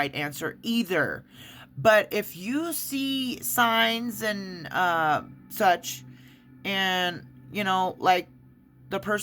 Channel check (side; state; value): both; identical; correlation 1.00